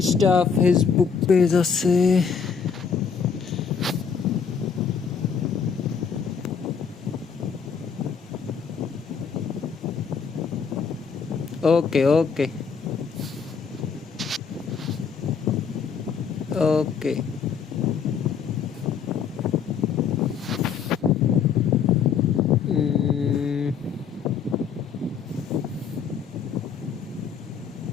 ফেসবুক পেজ আছে। ওকে ওকে ওকে।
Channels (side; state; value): right; quieter; 6.5 dB